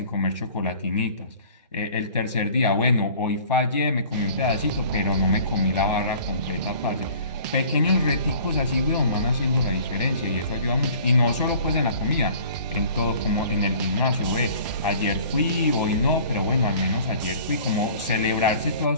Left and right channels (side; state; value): both; inverted; correlation -0.49